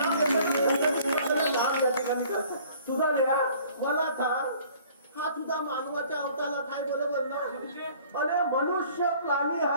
काम या ठिकाणी करतात सुद्धा मला सांग हा तुझा मानवाच्या अवताला काय बरोबर ना अरे मनुष्य प्राणी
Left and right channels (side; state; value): both; inverted; correlation -0.53